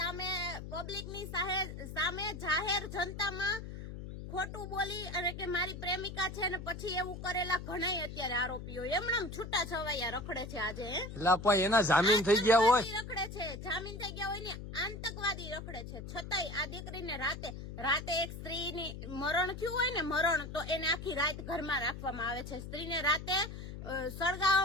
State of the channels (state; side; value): noise; left; hum, 9 dB below the sound